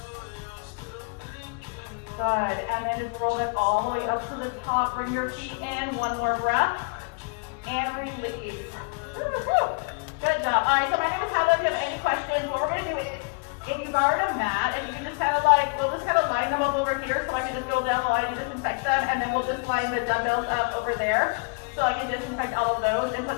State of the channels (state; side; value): quieter; right; 33.8 dB